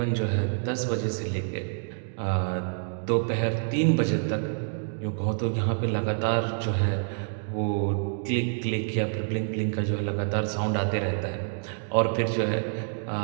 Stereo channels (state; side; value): silent; left; digital silence